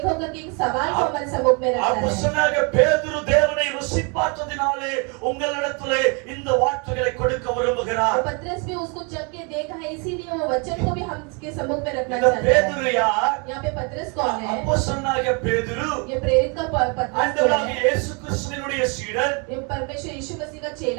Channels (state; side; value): quieter; left; 33.9 dB